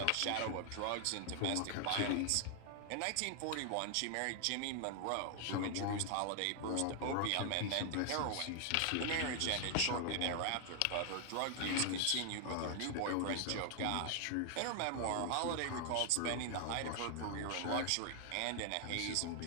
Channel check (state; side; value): different; both; correlation 0.00